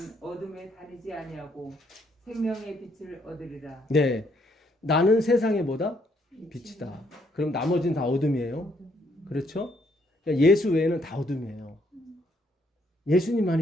어둠에 다니지 아니하고 생명의 빛을 얻으리라. 네, 나는 세상의 뭐다? 빛이다. 그럼 나머지는 다 어둠이에요. 그렇죠? 그러니까 예수 외에는 다 어둠이에요.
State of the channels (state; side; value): normal; both; correlation 0.71